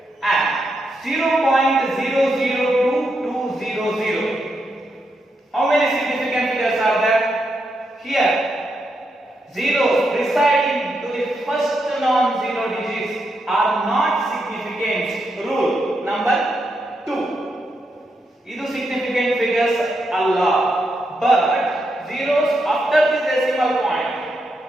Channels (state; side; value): normal; both; correlation 0.83